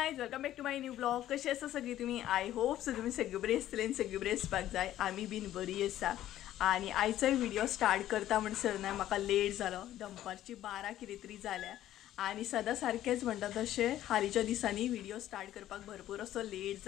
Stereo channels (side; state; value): right; quieter; 13.0 dB